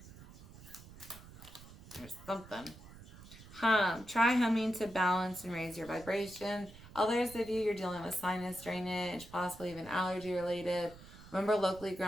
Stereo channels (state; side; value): noise; right; rumble, 18 dB below the sound